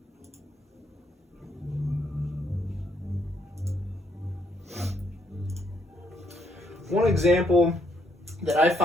One example that I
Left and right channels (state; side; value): normal; both; correlation 0.72